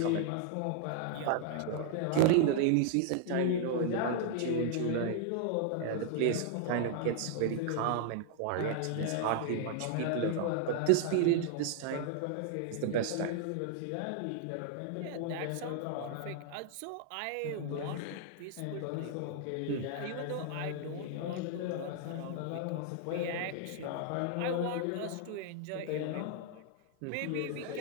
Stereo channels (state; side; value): different; both; correlation 0.00